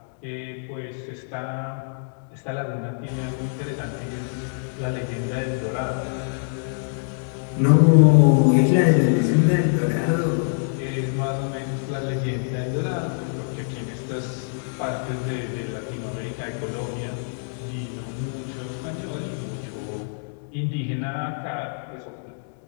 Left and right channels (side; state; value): right; silent; digital silence